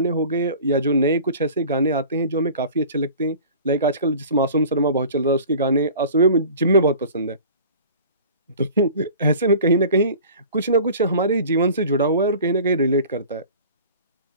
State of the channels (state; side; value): inverted; both; correlation -0.43